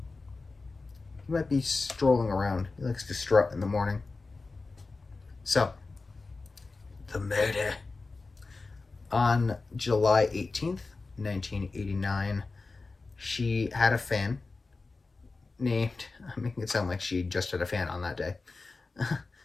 He might be strolling around. He likes to strut in the morning. So, the murder. On July 18th, 1989, she had a fan named, I'm making it sound like she just had a fan on that day.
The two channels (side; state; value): right; quieter; 3.8 dB